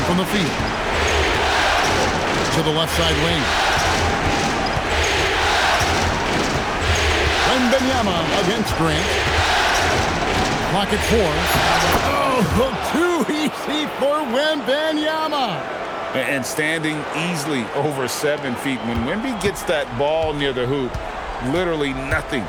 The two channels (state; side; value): identical; both; correlation 1.00